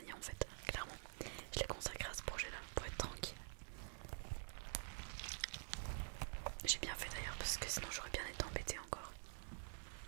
en fait, clairement. Je l'ai consacré à ce projet là pour être tranquille. J'ai bien fait d'ailleurs parce que sinon j'aurais bien été embêtée encore.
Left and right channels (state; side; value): silent; left; digital silence